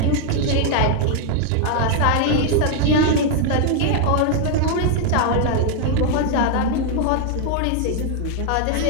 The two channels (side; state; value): both; different; correlation 0.00